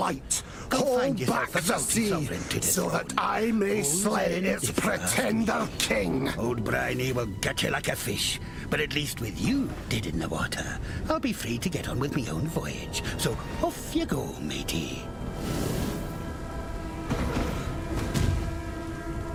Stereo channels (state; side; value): identical; both; correlation 1.00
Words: hold back the sea so that I may slay its pretender king. Old Briny will get you like a fish, but at least with you dead in the water, I'll be free to get on with my own voyage. So off you go, matey.